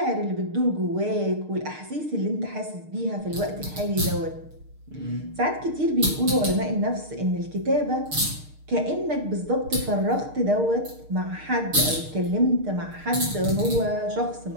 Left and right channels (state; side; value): late; left; 6.6 ms